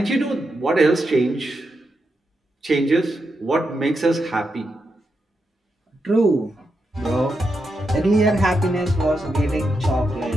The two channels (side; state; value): both; normal; correlation 0.85